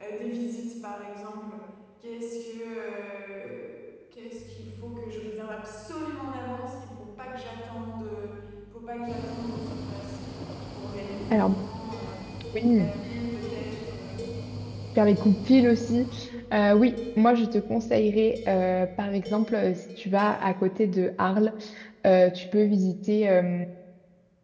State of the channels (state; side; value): identical; both; correlation 1.00